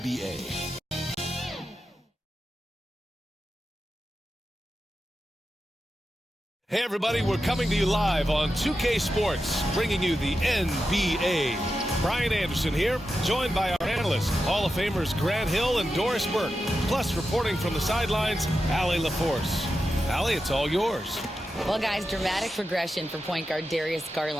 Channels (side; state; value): both; normal; correlation 0.90